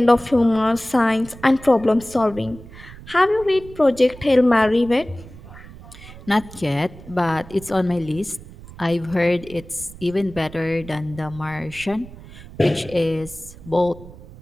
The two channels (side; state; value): right; noise; rumble, 17 dB below the sound